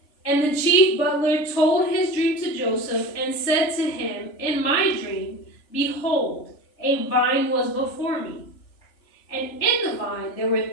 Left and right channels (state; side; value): late; right; 3.4 ms